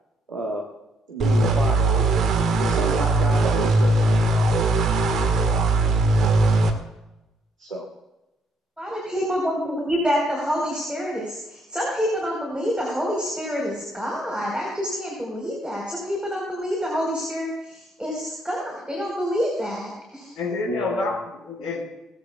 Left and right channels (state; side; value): normal; both; correlation 0.71